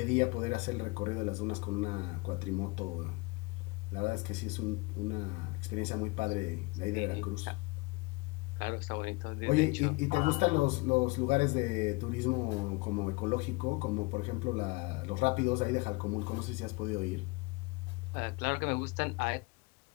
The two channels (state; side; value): quieter; right; 26.3 dB